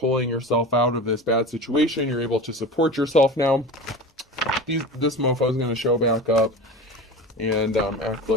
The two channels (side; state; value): both; normal; correlation 0.31